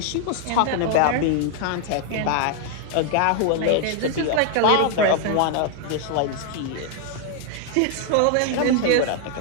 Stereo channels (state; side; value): different; both; correlation 0.00